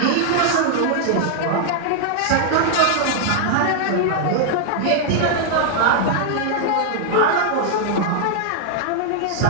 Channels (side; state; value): both; different; correlation -0.01